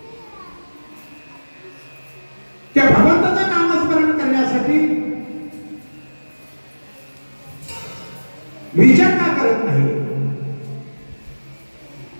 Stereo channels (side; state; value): both; inverted; correlation -1.00